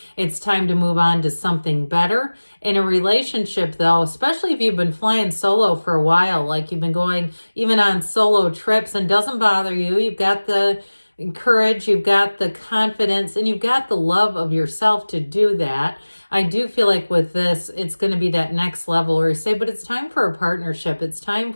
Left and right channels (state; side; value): inverted; both; correlation -1.00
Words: It's time to move on to something better. In a relationship, though, especially if you've been flying solo for a while, like you've been going even on solo trips and doesn't bother you, you've got the courage, you've got the confidence, and you've got the love of yourself to do that. I do feel like with this, it's going to be that next level where you say, but it's time for a partnership. It's time